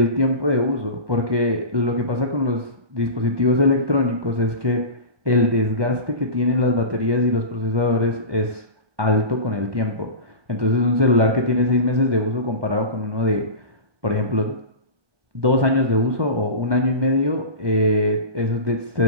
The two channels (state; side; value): late; left; 1.2 ms